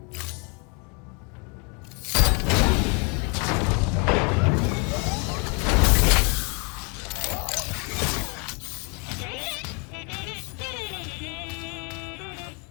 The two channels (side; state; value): right; quieter; 33.8 dB